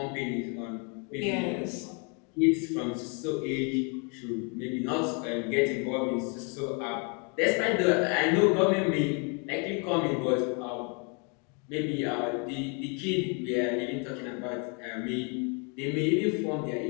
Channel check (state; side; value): quieter; right; 35.9 dB